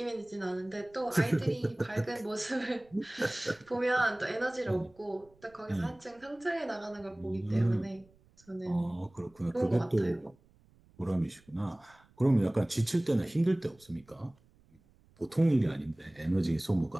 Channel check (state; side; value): noise; right; rumble, 30 dB below the sound